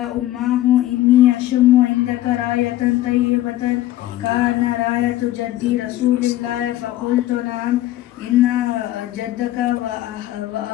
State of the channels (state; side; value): quieter; right; 14.6 dB